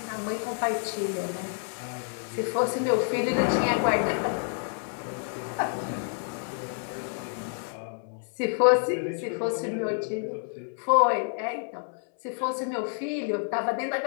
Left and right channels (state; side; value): silent; right; 59 dB below the other